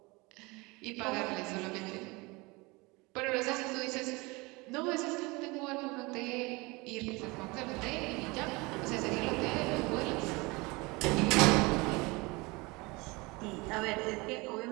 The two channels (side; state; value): left; quieter; 24.9 dB